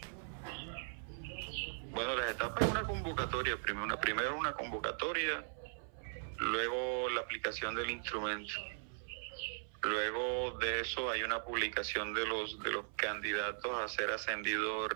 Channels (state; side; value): silent; left; 52 dB below the other